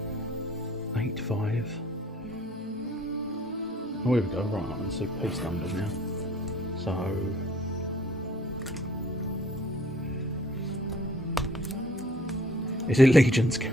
5, Oh, here we go. Right, I can see piece numbers now. So, is it Legion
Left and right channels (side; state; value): both; normal; correlation 0.56